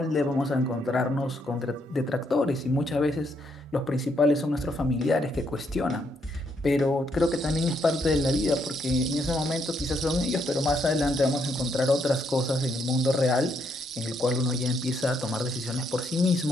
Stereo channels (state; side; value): normal; both; correlation 0.75